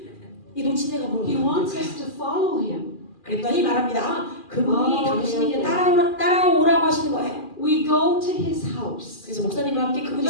노친애가 뭘 He wants 원하는 us to follow him. 그랬더니 말합니다. 그분이 당신에게 따라오라고 하시는 거예요. We go to his house. 그래서 목사님과 함께 그분이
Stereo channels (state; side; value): late; right; 2.4 ms